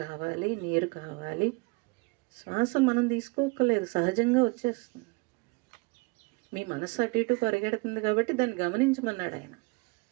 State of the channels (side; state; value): left; quieter; 28.5 dB